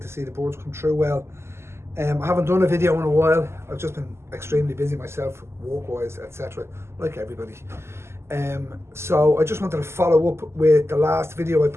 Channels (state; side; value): late; left; 0.13 ms